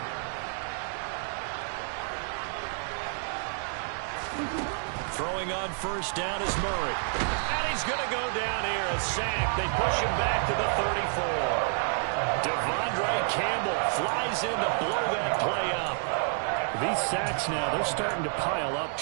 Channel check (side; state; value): left; silent; 58 dB below the other